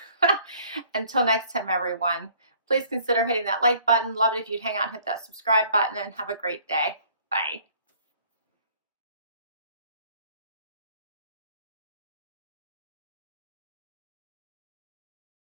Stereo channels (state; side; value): inverted; both; correlation -0.57